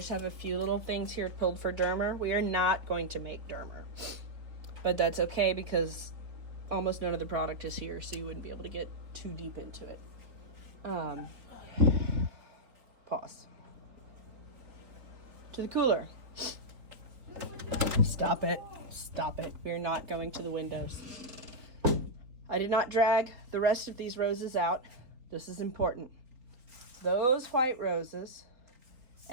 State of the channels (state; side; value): late; left; 3.9 ms